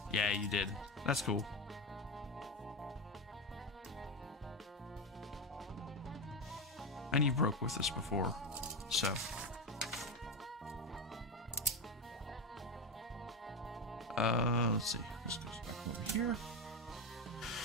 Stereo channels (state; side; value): normal; both; correlation 0.16